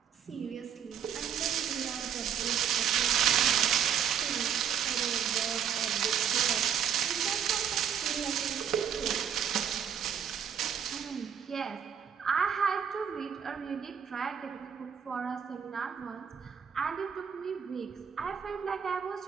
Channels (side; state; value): left; quieter; 8.3 dB